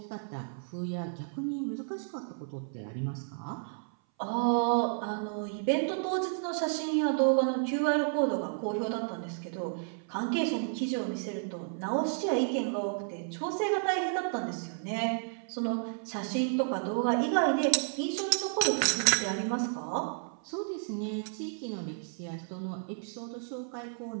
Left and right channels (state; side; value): silent; left; 56 dB below the other